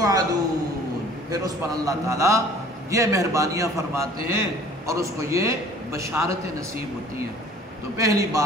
پھر اس پر اللہ تعالیٰ یہ مہربانیاں فرماتے ہیں اور اس کو یہ بشارتیں نصیب ہوتی ہیں۔ تو پہلی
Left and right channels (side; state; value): both; normal; correlation 0.50